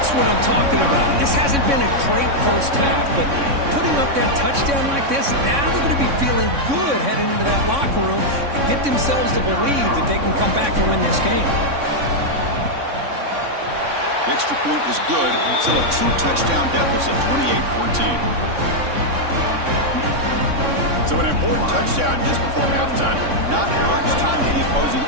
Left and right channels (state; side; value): late; left; 3.6 ms